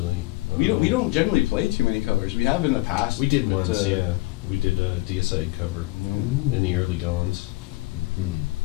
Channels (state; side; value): quieter; right; 20.6 dB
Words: We don't generally play too many covers. We have in the past. We did but, once, yeah. We did a Deicide cover in the early goings.